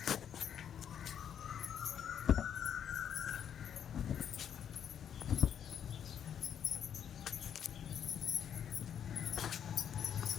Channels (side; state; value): right; quieter; 8.9 dB